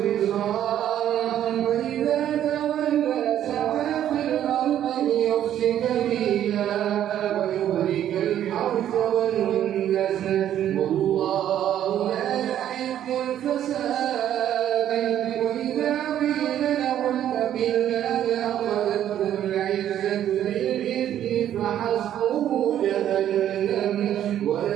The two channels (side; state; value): left; quieter; 11.0 dB